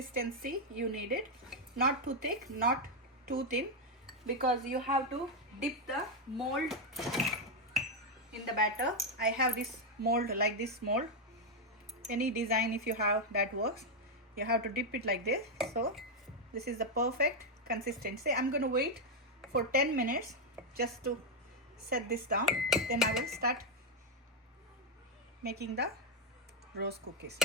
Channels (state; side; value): normal; both; correlation 0.02